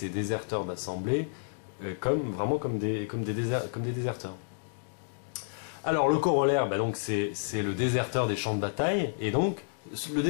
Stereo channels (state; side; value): silent; right; digital silence